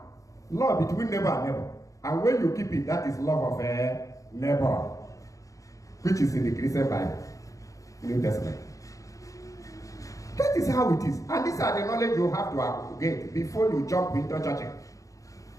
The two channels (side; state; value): right; late; 0.16 ms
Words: law between neighbor and neighbor. And when you keep it, that is love of a neighbor, which is in the Christian Bible, New Testament. That is how it is. And these are the knowledge you have to get before you jump into church.